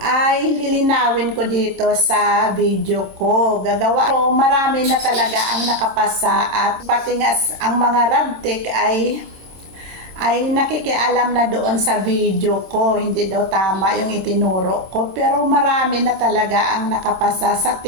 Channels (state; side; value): late; left; 26 ms